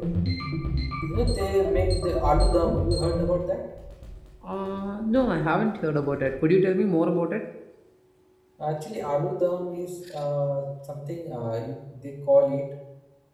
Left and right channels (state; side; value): identical; both; correlation 1.00